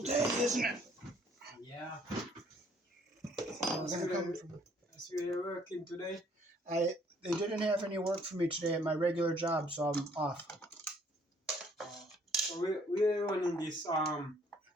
day, isn't it? Yeah. We're gonna come from. So you're working today? They didn't have any work for me today at my regular job, so I'm off. So we're running this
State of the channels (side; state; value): both; normal; correlation 0.62